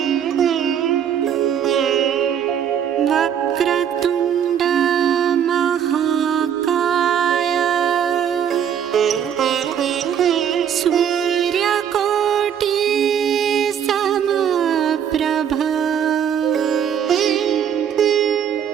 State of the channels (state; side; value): quieter; left; 8.8 dB